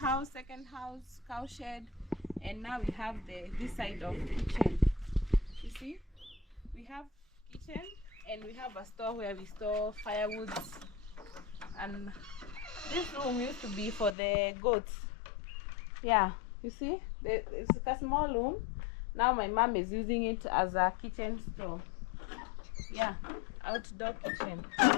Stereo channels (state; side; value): drops out; right; at 14.2 s